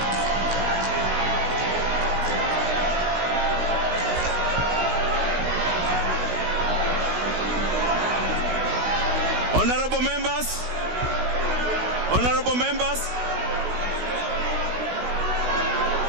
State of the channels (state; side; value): late; left; 16 ms